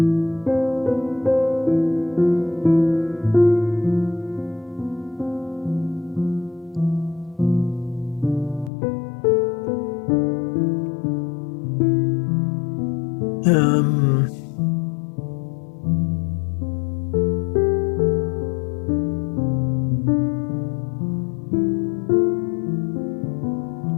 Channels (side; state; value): right; drops out; at 8.7 s